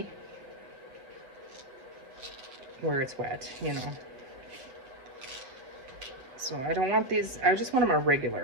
where it's wet, you know. So I don't want these, I just want them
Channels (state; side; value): late; left; 7.6 ms